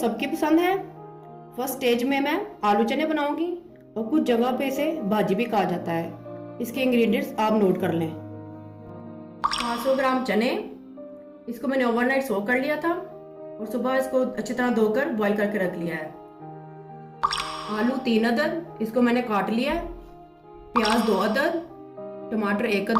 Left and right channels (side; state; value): both; identical; correlation 1.00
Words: पसंद है। फर्स्ट स्टेज में मैं आलू चने बनाऊंगी और कुछ जगह पे इसे भाजी भी कहा जाता है। इसके इंग्रेडिएंट्स आप नोट कर लें। 500 ग्राम चने, इसको मैंने ओवरनाइट सोक कर लिया था और सुबह इसको अच्छी तरह धोकर बॉईल करके रख लिया है। आलू 3 अदद, इसको मैंने काट लिया है। प्याज 2 अदद, टमाटर 1